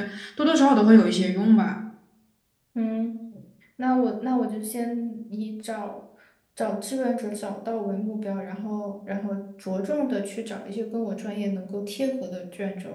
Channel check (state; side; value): identical; both; correlation 1.00